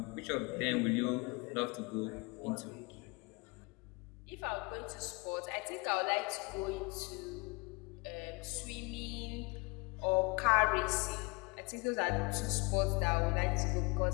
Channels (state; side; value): quieter; right; 27.1 dB